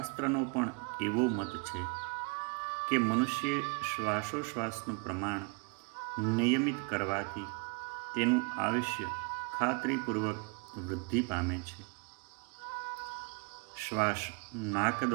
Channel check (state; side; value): quieter; left; 32.1 dB